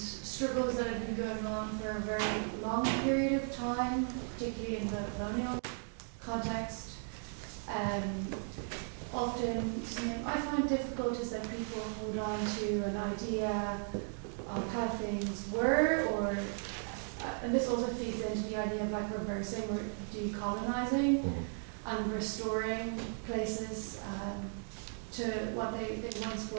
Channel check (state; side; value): silent; left; 54 dB below the other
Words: that have been going on for a very long period of time, particularly in the colonial context. Often something I find difficult is that people hold on to an idea of how things were, or and this also feeds into the idea of, like, reversing or decolonizing and restoring places to what they once